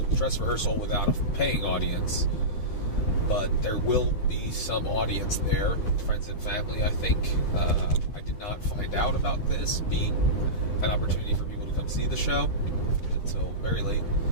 dress rehearsal without a paying audience. But there will be some audience there, friends and family, I think. I did not find out about this being an opportunity for people to come see the show until very late.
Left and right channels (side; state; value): right; late; 9.5 ms